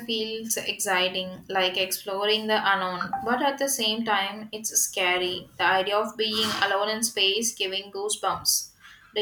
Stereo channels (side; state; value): both; identical; correlation 1.00